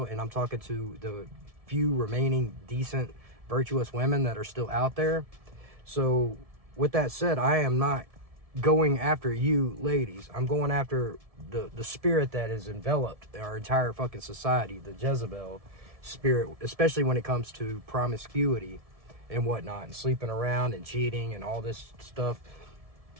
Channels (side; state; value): left; late; 1.7 ms